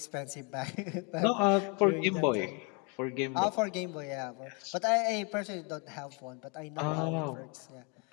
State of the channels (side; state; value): right; quieter; 33.6 dB